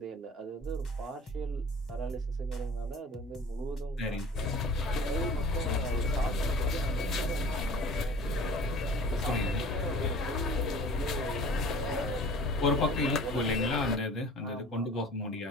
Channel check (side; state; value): both; normal; correlation 0.44